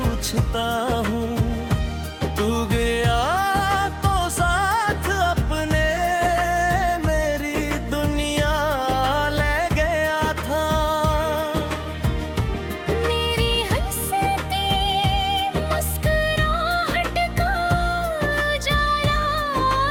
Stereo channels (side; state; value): both; identical; correlation 1.00